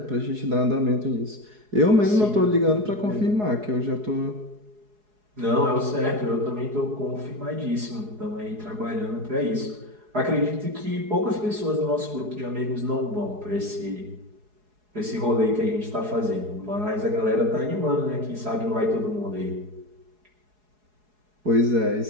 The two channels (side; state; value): left; late; 4.8 ms